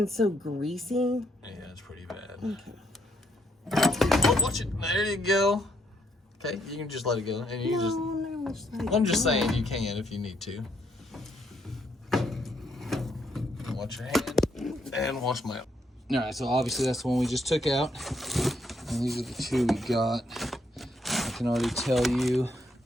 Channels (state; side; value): normal; both; correlation 0.73